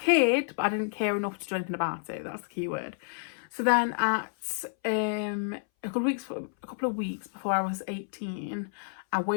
but I didn't care enough to do anything about it. That's the key word. So then at a couple of weeks before I was 18, I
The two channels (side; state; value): right; silent; 58 dB below the other